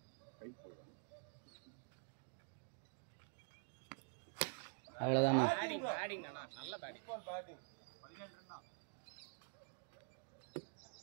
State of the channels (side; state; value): left; silent; digital silence